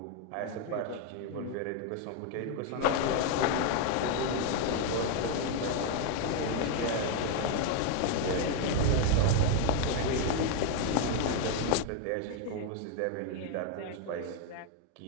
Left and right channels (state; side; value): different; both; correlation 0.01